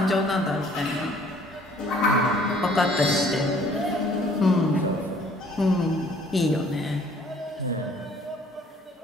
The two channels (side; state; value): both; normal; correlation 0.58